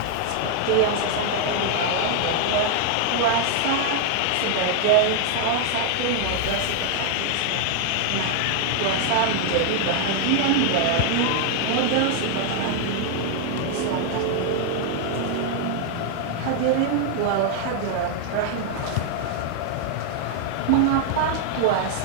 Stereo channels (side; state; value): both; different; correlation 0.00